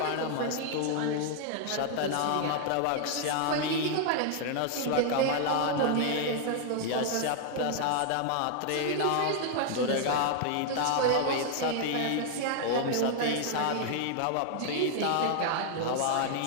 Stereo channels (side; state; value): both; different; correlation 0.00